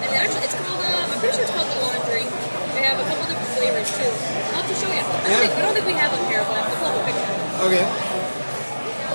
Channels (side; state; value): both; inverted; correlation -1.00